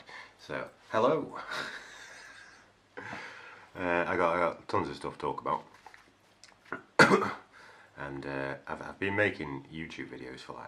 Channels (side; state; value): both; identical; correlation 1.00